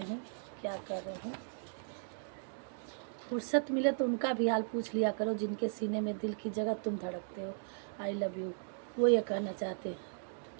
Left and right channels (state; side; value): silent; left; digital silence